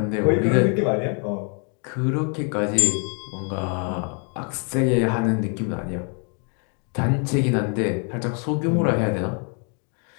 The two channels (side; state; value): right; quieter; 39.7 dB